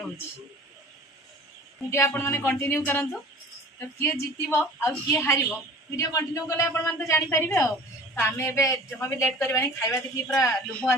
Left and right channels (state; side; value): normal; both; correlation 0.44